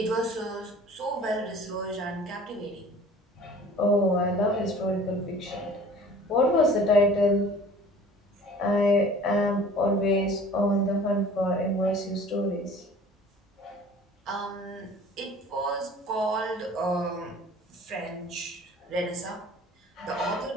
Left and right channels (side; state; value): both; normal; correlation 0.47